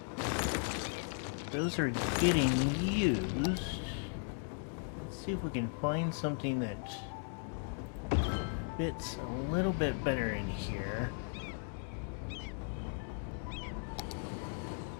those are getting used. Let's see if we can find something that fits a little bit better in here.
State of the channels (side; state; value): right; silent; 53 dB below the other